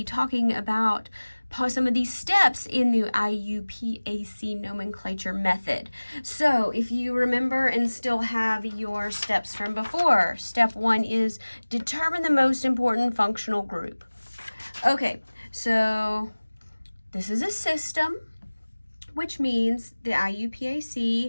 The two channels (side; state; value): both; inverted; correlation -1.00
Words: talking about some of these steps in the IUPAC nomenclature method. So if you remember and still have your steps from before, step 1 is determine the most important functional group. Okay, so this is a system, which means the